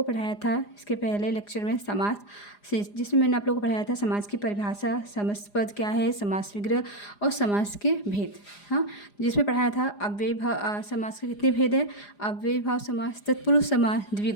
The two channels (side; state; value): right; late; 4.9 ms